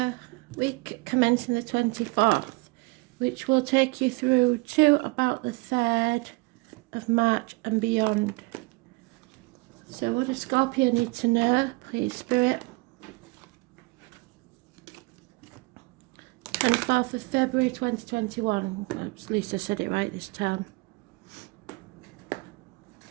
week commencing the 24th, which will take you through to about the 3rd of March and beyond. So what does Scorpio need to know, please, Spirit? 24th of February 2021. At least I said it right this time.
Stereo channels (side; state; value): left; quieter; 26.5 dB